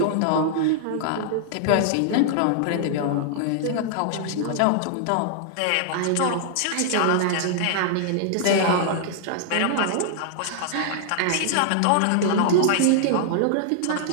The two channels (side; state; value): both; different; correlation -0.01